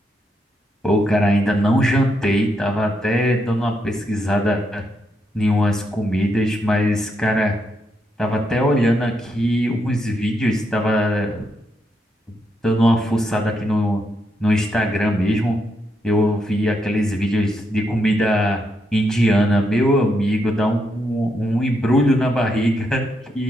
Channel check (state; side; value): normal; both; correlation 0.80